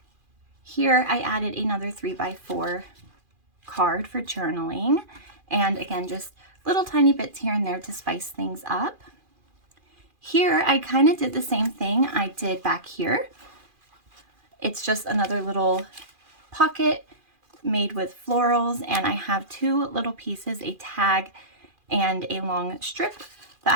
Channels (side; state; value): left; late; 2.4 ms